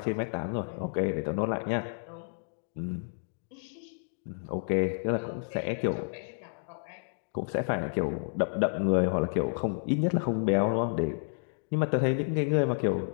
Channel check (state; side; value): silent; right; digital silence